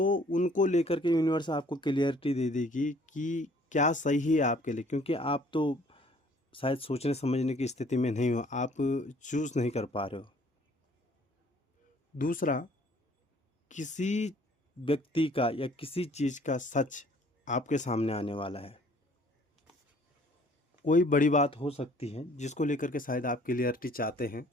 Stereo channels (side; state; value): both; normal; correlation 0.57